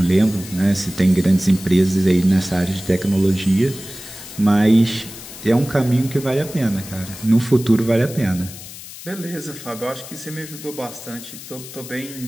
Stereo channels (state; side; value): noise; left; hiss, 14 dB below the sound